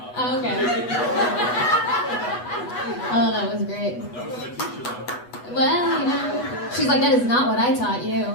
Oh, okay. Oh, that was great. That was my teacher, though. Well, you know, she's like, that is not what I taught you.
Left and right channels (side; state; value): right; late; 8.2 ms